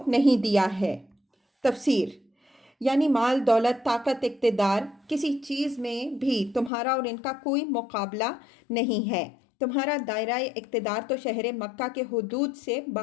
نہیں دیا ہے۔ تفسیر، یعنی مال دولت طاقت اقتدار، کسی چیز میں بھی تمہارا اور ان کا کوئی مقابلہ نہیں ہے۔ تمہارا دائرہ اقتدار تو شہر مکہ کے حدود سے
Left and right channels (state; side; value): drops out; right; at 6.7 s